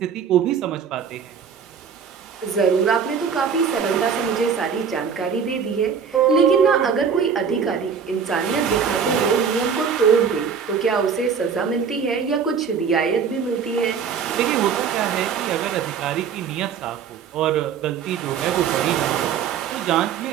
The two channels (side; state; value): left; quieter; 6.7 dB